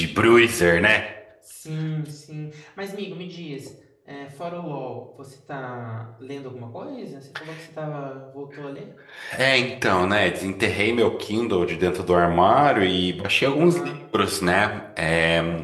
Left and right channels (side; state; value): both; identical; correlation 1.00